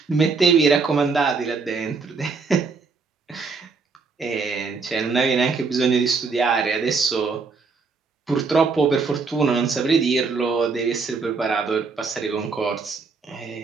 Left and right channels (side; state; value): left; quieter; 4.6 dB